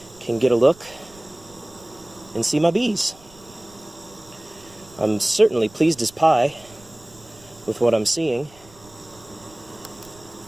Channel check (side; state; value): right; noise; rumble, 24 dB below the sound